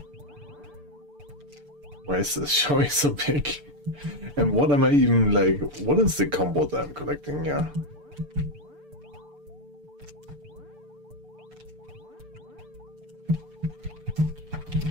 Why is this showing so big? And what am I even like? What is the combo that I'm collecting here?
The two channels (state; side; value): late; left; 6.8 ms